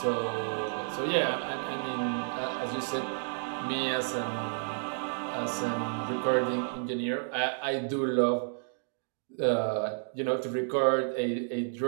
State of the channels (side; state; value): left; silent; digital silence